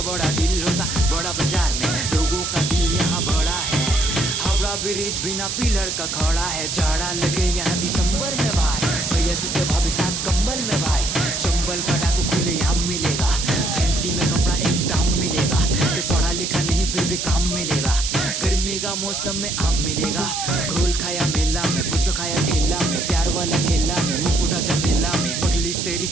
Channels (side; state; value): right; noise; hiss, 3 dB below the sound